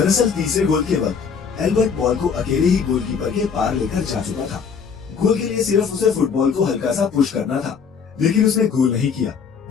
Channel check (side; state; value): right; quieter; 6.3 dB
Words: तीसरे गोल के वक्त एल्बर्ट बॉल को अकेले ही गोलकीपर के पार लेकर जा चुका था। गोल के लिए सिर्फ उसे फुटबॉल को हल्का सा पुश करना था, लेकिन उसने गोल नहीं किया